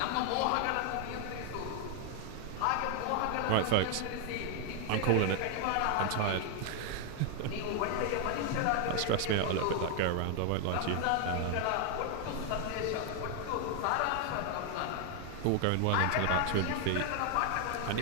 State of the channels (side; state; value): both; different; correlation 0.00